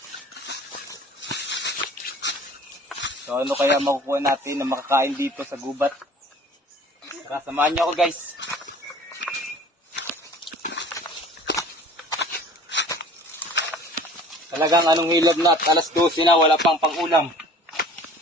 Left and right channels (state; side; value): normal; both; correlation 0.47